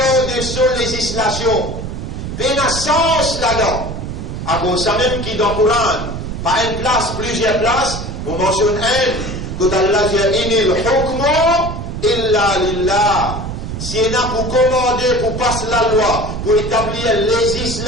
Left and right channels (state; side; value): noise; right; rumble, 6 dB below the sound